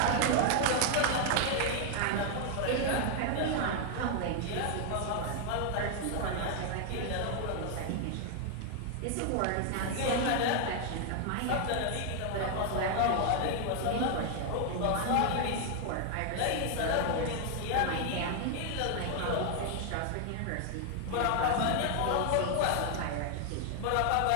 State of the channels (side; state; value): both; different; correlation 0.00